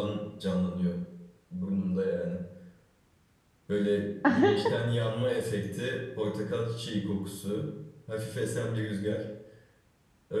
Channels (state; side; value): identical; both; correlation 1.00